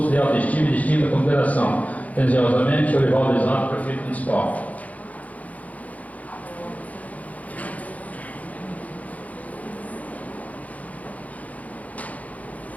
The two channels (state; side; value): late; right; 0.072 ms